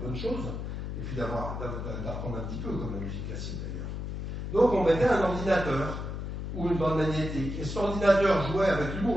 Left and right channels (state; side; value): noise; left; hum, 5 dB below the sound